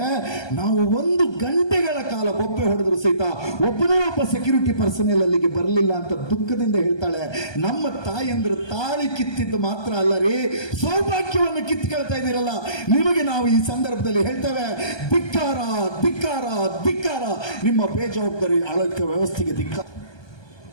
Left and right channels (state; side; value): late; right; 1.2 ms